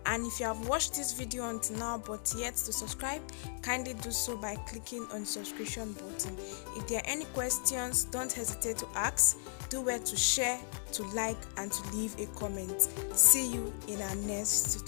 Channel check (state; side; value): silent; right; digital silence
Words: And if you have watched this video until now but yet to subscribe, kindly do so by clicking on the subscription button. If there are any questions, don't hesitate to ask. Do well to share, to like, and to leave a comment. See you in our next